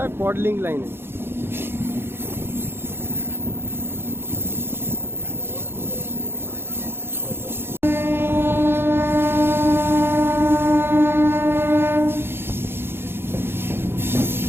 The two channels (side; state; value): left; late; 0.11 ms